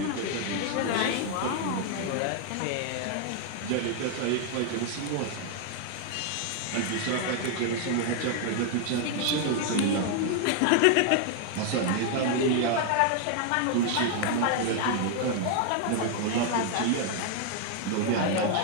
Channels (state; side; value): different; both; correlation 0.00